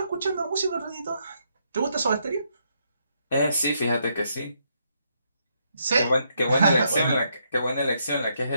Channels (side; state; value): both; inverted; correlation -0.76